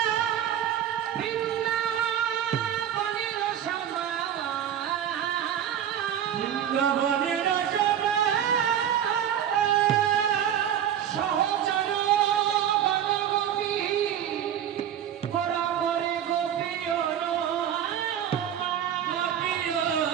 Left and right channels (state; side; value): quieter; left; 9.9 dB